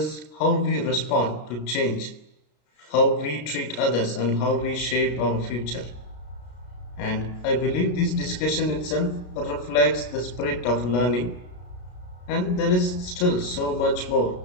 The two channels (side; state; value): right; late; 33 ms